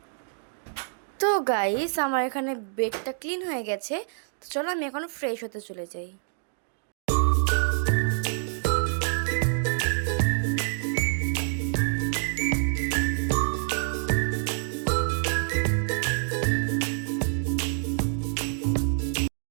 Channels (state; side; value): silent; left; digital silence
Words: তো গাইস, আমার এখানে বেডটা ক্লিন হয়ে গেছে। তো চলো আমি এখন ফ্রেশ হতে চলে যাই।